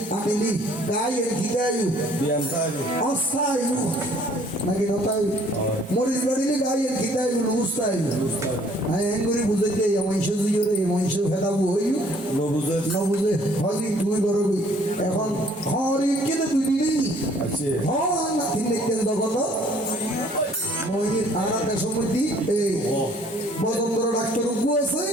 আনিলি গায়ে গিদায়ু অস্থায়ু নাকি নতায়ু মরিস বাড়িলে গায়ে গিদায়ু লুস্তায়ু হ্যাঁ এঙ্গুরি বুঝাইতে মহিষ দিয়ে মহিষ ফেদাবো হইউ নবুঝে হলি তুই করবি এখন হরি কেটে তুই দিলি হন নাতি দেখতেন তখন মহির আনাতে সমৃদ্ধি এই বদন্দর ডাক্তার উপু আছে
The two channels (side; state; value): both; normal; correlation 0.59